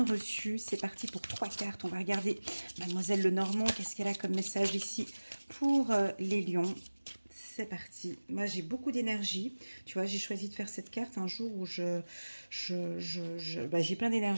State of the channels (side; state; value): both; inverted; correlation -1.00